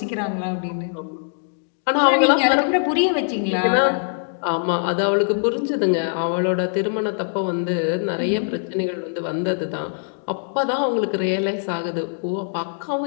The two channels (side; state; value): right; silent; digital silence